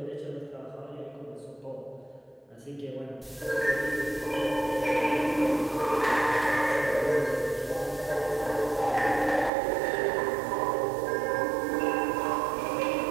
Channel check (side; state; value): left; drops out; at 9.5 s